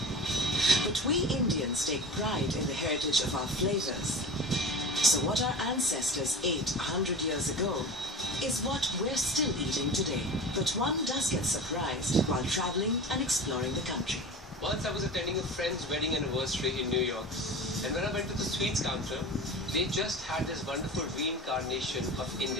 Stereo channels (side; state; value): both; normal; correlation 0.33